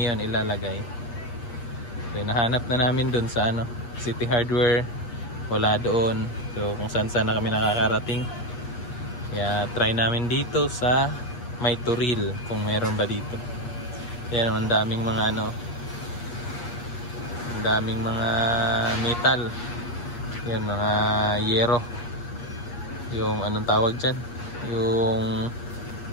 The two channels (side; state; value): right; late; 8.4 ms